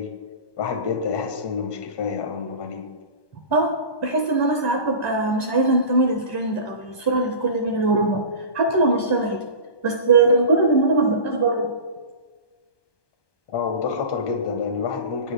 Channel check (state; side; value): late; right; 1.2 ms